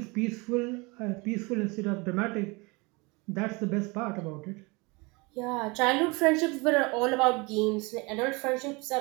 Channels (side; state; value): left; quieter; 27.1 dB